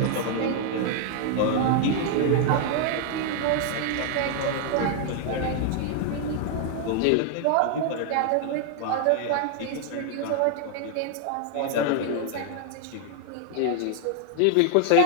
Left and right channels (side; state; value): both; different; correlation 0.00